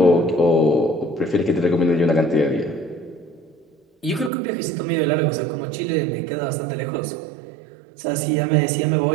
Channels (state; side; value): drops out; left; at 4.3 s